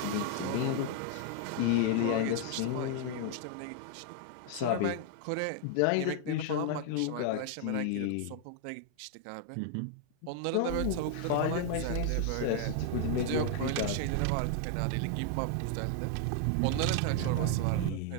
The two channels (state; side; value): different; both; correlation 0.00